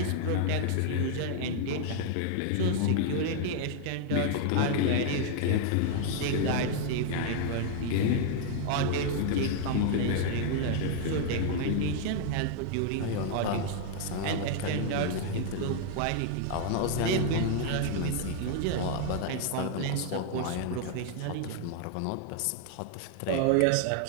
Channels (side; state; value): both; different; correlation 0.00